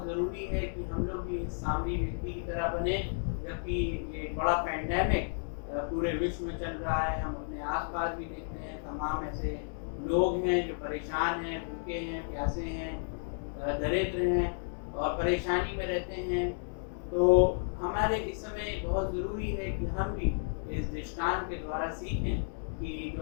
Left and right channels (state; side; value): silent; right; 56 dB below the other